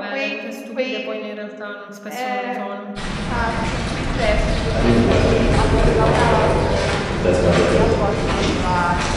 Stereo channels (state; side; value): identical; both; correlation 1.00